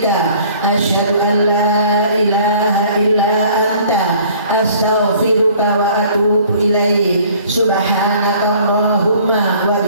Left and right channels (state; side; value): inverted; both; correlation -0.53